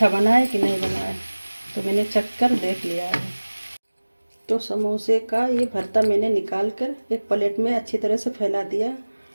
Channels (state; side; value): inverted; both; correlation -1.00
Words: बना है कि नहीं बना है। तो मैंने चख कर देख लिया है। तो समोसे का ये भरता मैंने निकाल कर एक प्लेट में अच्छी तरह से फैला दिया,